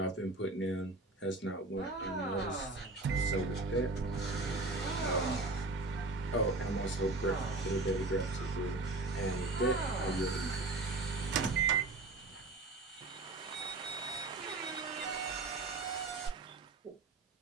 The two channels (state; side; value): quieter; left; 3.0 dB